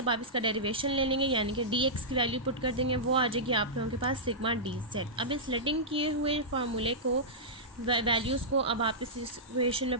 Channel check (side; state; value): both; normal; correlation -0.13